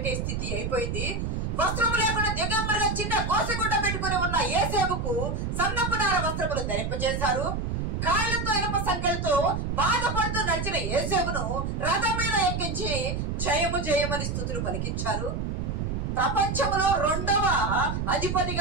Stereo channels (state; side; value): noise; right; rumble, 2 dB below the sound